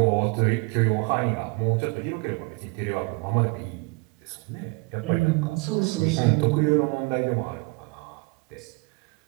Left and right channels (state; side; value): quieter; left; 28.3 dB